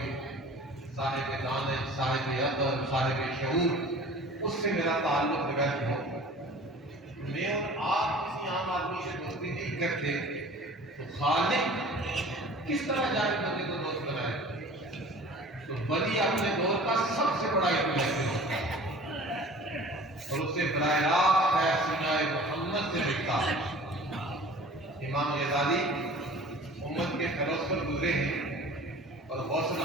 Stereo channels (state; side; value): normal; both; correlation 0.44